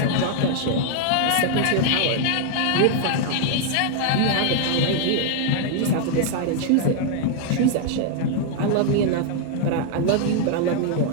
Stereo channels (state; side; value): different; both; correlation 0.00